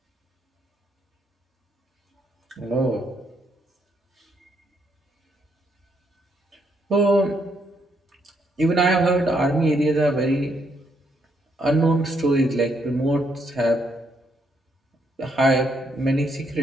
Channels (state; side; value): normal; both; correlation 0.74